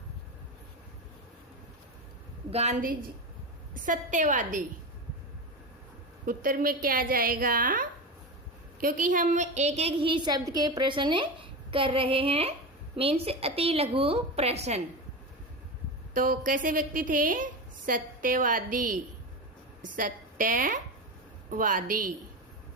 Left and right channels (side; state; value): both; normal; correlation 0.21